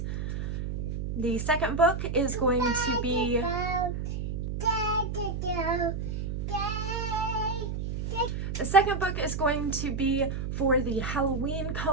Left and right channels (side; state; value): right; noise; hum, 3 dB below the sound